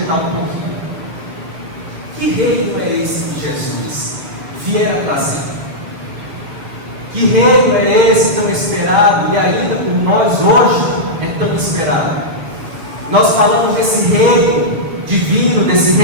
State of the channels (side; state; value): left; late; 7.1 ms